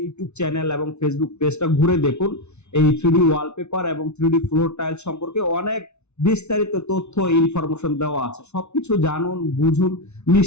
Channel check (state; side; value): late; right; 0.81 ms